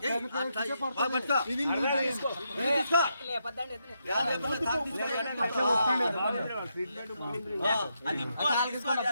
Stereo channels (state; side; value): inverted; both; correlation -0.81